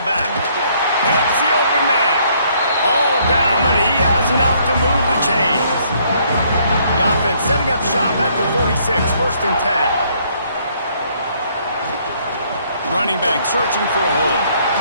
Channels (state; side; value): inverted; both; correlation -0.66